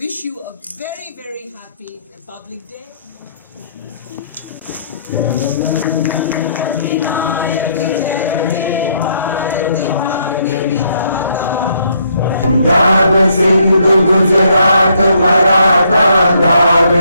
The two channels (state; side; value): inverted; both; correlation -0.70